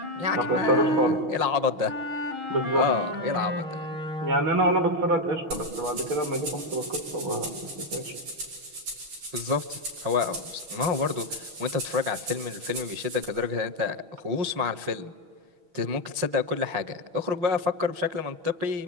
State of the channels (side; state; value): left; late; 6.2 ms